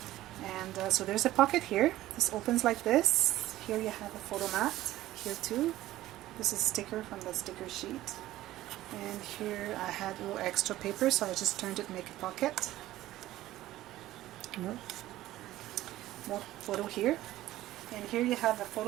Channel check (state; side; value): quieter; left; 15.2 dB